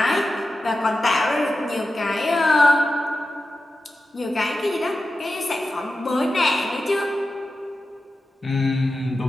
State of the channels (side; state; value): both; normal; correlation 0.92